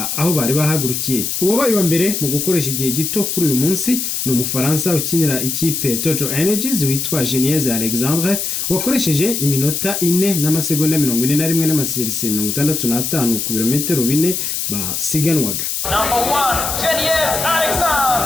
aho bari bahagurukiye. Uwabaye wa mbere mu gukoresha igihe gito kuri uyu munsi ni Umufaransa ukinira ikipe Total Energies witwa Geniez Alexandre wakoresheje iminota 4 n'amasegonda 41 n'amasegonda 65 ku birometero 4 basiganwaga. Geniez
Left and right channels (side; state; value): left; noise; hiss, 2 dB below the sound